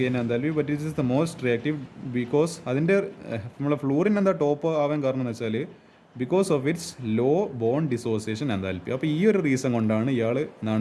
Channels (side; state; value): both; identical; correlation 1.00